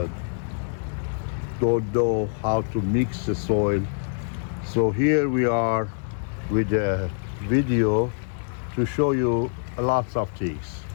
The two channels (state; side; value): silent; right; digital silence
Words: don't know how to mix the soil. So here we are with a video to show you lots of things.